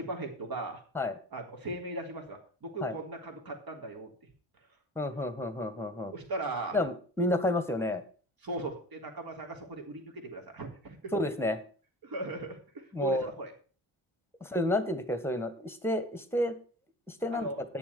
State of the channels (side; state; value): both; normal; correlation 0.38